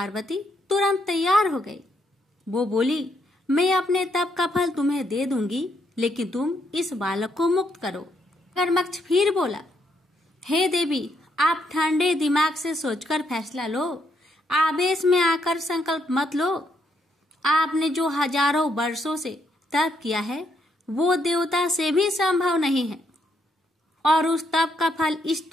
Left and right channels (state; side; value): normal; both; correlation 0.75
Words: तुरंत तैयार हो गई। वो बोली, मैं अपने तप का फल तुम्हें दे दूंगी, लेकिन तुम इस बालक को मुक्त करो। मगरमच्छ फिर बोला, हे देवी, आप ठंडे दिमाग से सोचकर फैसला लो। आवेश में आकर संकल्प मत लो। आपने जो हजारों वर्षों से तप किया है वो देवता से भी संभव नहीं है और उस तप का फल इस